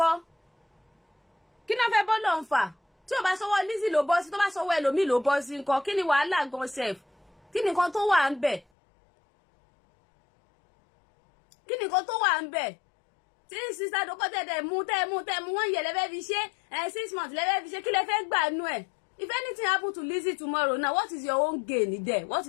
kí náà fẹ́ bọ́ lọ́n fà tí ò bá sọwọ́ Lizzy ló bọ́ sí tó bá sọwọ́ ẹlòmíì ló bọ́ sí nǹkan kí ni wàhálà gan sef kí ni nǹkan tó wà ń bẹ̀ kí ni nǹkan tó wà ń bẹ̀ tí Sister Dorcas tẹ̀ mú wọ́n yẹ lẹ́fẹ́ fi ṣe 6 months lẹ́fẹ́ fi ṣe kí lẹ́fẹ́ gbà nú ẹ̀. If anything happen to Lizzy tomorrow now, what is your own gain there? What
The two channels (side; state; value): right; drops out; at 8.7 s